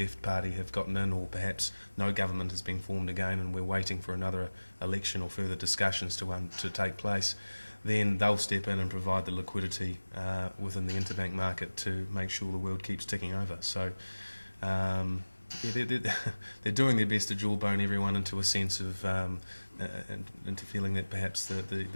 party have gotten in, or perhaps no government has been formed again and we're waiting for another election or further discussions to take place, then they'll step in and provide the liquidity within the interbank market to make sure the world keeps ticking over. So they're doing their best to jawbone everyone into a sense of into feeling that perhaps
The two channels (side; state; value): both; inverted; correlation -1.00